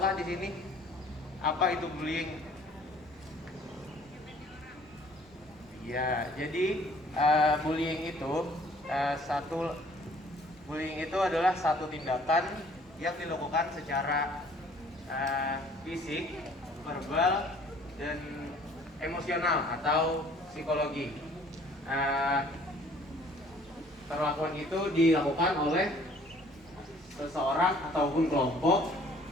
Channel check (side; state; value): both; normal; correlation 0.56